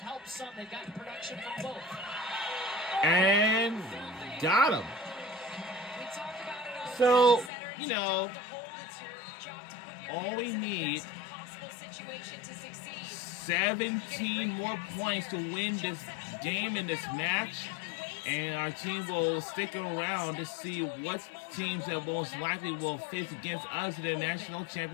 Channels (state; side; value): drops out; right; at 7.5 s